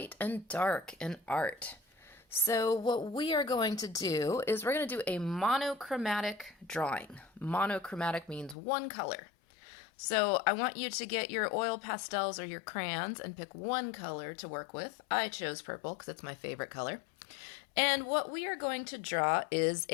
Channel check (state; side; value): drops out; right; at 8.6 s